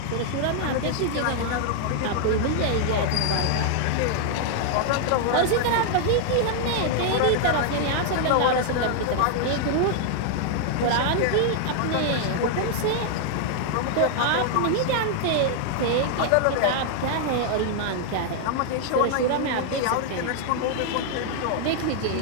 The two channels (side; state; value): both; different; correlation 0.00